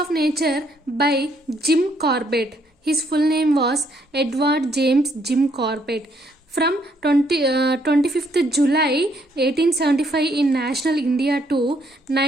Nature by Jim Corbett. His full name was Edward James Jim Corbett. From 25th July 1875 in National India to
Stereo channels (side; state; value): both; normal; correlation 0.70